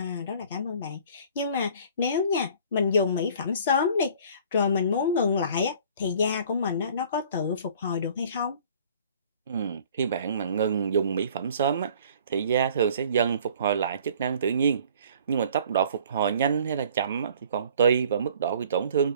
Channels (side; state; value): both; inverted; correlation -0.52